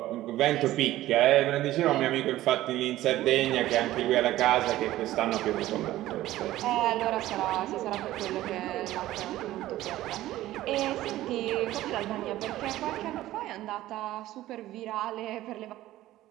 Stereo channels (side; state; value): left; quieter; 15.2 dB